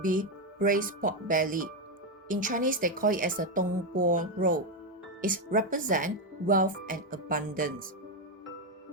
be braised pork belly. In Chinese, they call it as a dong bo roll. It represents wealth and abundance.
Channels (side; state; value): both; normal; correlation 0.07